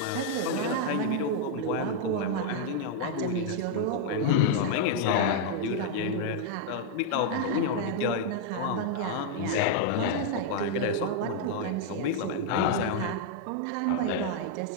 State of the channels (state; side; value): different; both; correlation -0.01